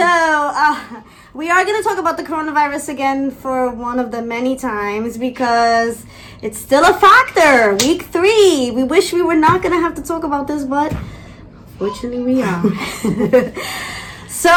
we are going to talk about the coronavirus again for one of the many times because it's still a factor. Week 3. We wish we were not going to have to talk about this, but fortunately we are. So,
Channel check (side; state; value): both; identical; correlation 1.00